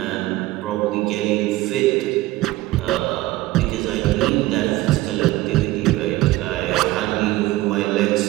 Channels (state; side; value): quieter; left; 17.5 dB